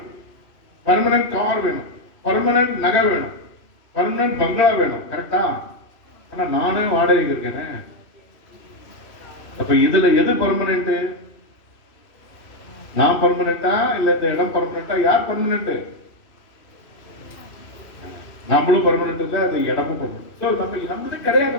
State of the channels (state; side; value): late; right; 2.6 ms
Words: பர்மனன்ட் கார் வேணும், பர்மனன்ட் நகை வேணும், பர்மனன்ட் பங்களா வேணும். கரெக்டா? ஆனா நானே வாடகைக்கு இருக்கேன். அப்ப இதுல எது பர்மனன்ட்? நான் பர்மனண்டா இல்ல இந்த இடம் பர்மனண்டா? யார் பர்மனன்ட்? நம்மளும் பர்மனன்ட் இல்ல, அது இடமும் பர்மனன்ட். நம்மது கிடையாது.